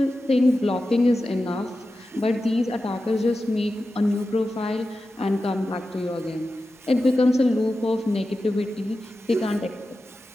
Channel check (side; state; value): both; normal; correlation 0.92